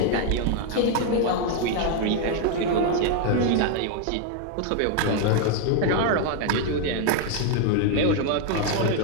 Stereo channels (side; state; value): both; different; correlation 0.01